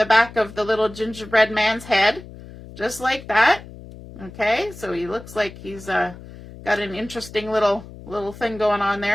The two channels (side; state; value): left; noise; hum, 16 dB below the sound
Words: back of the little gingerbread man's head, just like that. Okay, so he looks like he's got an interesting little thing going on